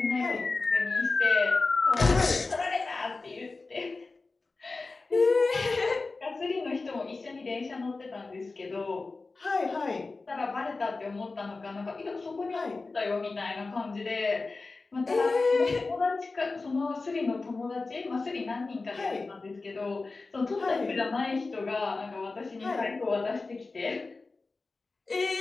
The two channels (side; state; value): right; quieter; 3.7 dB